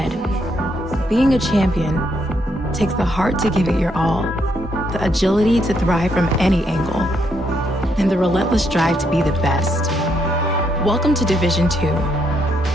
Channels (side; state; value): both; normal; correlation 0.75